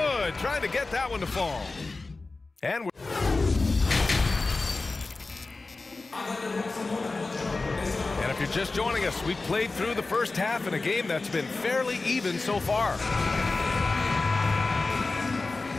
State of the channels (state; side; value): quieter; right; 3.6 dB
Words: Trying to get that one to fall. And if you're just joining us, we've played through the first half in a game that's been fairly even so far.